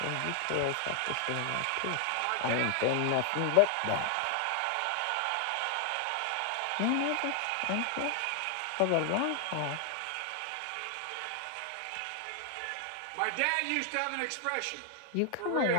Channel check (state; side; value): different; both; correlation 0.00